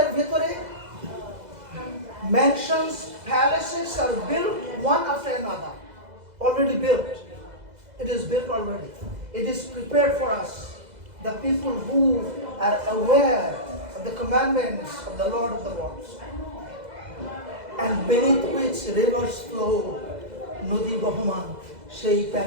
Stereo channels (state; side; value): late; left; 2.0 ms